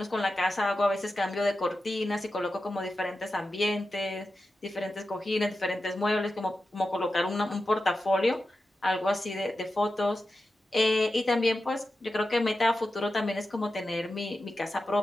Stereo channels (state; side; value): normal; both; correlation 0.91